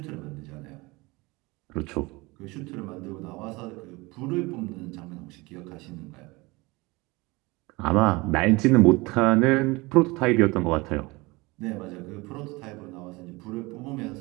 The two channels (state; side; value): quieter; left; 23.6 dB